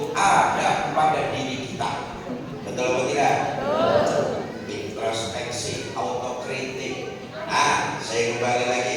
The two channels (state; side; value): identical; both; correlation 1.00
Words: ada pada diri kita. Betul atau tidak? Introspeksi, autokritik. Nah, saya kembali